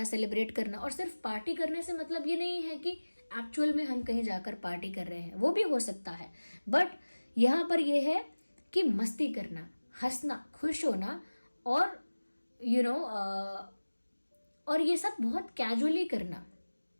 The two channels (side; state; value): both; inverted; correlation -1.00